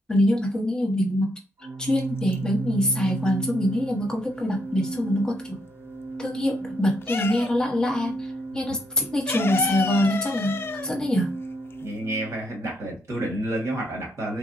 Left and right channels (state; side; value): normal; both; correlation 0.75